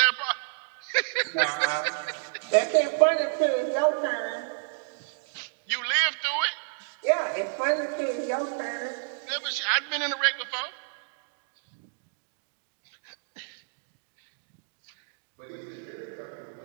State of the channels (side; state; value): left; silent; digital silence